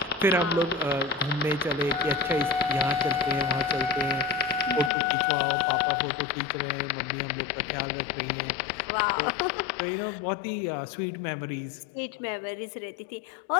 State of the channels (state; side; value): drops out; right; at 4.9 s